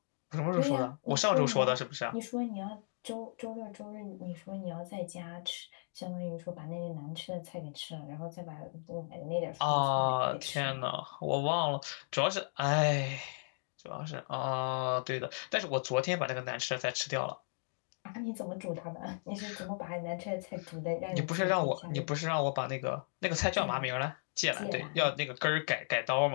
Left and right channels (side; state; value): right; silent; digital silence